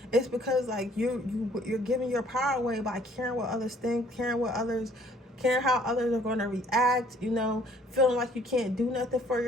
it's because, like, you're giving your power away by caring what others think, caring how others are going to react, you know, feeling like you can't do nothing for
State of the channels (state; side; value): normal; both; correlation 0.59